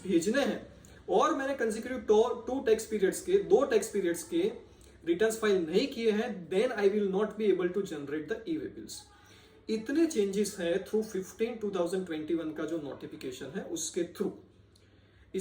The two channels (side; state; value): both; identical; correlation 1.00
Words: भेजने हैं और मैंने कंसेक्यूटिव 2 टैक्स पीरियड्स के 2 टैक्स पीरियड्स के रिटर्न्स फाइल नहीं किए हैं, then I will not be able to generate the e way bills. इतने चेंजेस है थ्रू 15/2021 का जो नोटिफिकेशन है उसके थ्रू।